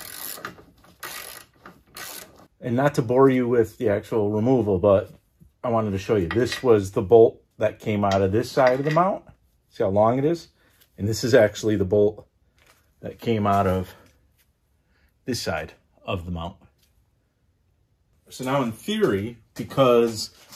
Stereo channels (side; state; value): both; identical; correlation 1.00